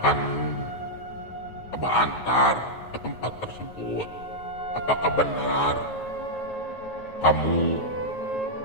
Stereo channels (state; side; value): late; right; 9.3 ms